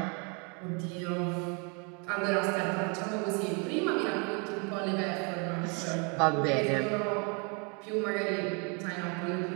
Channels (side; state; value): left; quieter; 34.4 dB